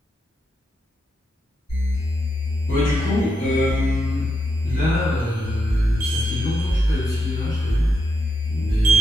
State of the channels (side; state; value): both; normal; correlation 0.83